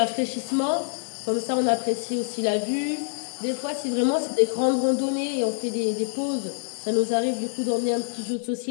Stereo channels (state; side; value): silent; right; digital silence